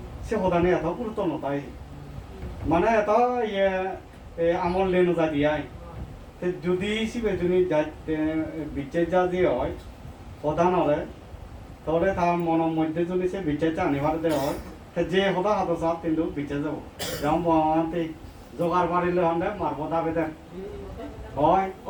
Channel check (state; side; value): identical; both; correlation 1.00